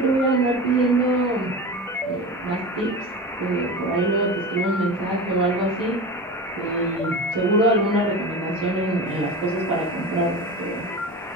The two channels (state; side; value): normal; both; correlation 0.29